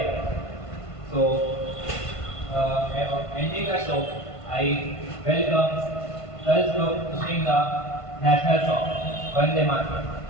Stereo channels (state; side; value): late; right; 1.5 ms